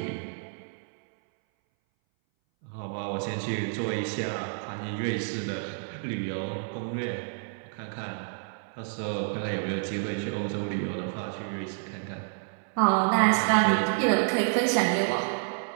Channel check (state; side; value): silent; left; 58 dB below the other